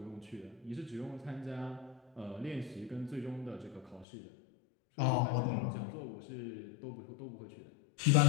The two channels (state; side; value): drops out; right; at 4.0 s